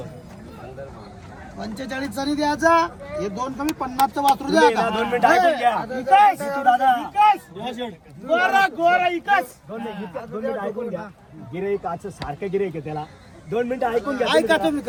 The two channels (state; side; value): identical; both; correlation 1.00